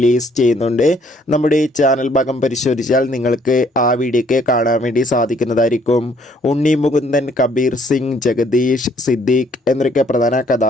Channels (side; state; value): both; normal; correlation 0.64